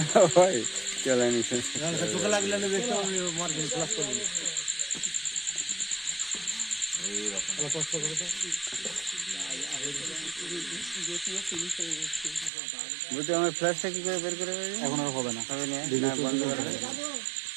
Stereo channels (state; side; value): drops out; left; at 12.5 s